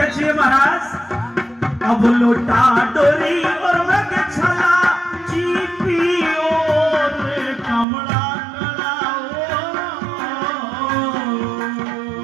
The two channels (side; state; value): left; drops out; at 7.9 s